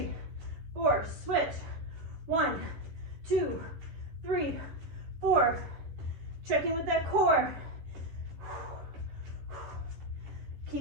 4. Switch. 1, 2, 3, 4. Check in with that core.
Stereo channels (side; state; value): left; late; 11 ms